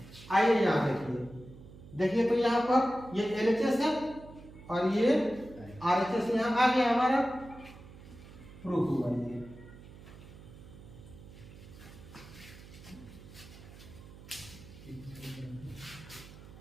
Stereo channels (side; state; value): right; noise; hum, 18 dB below the sound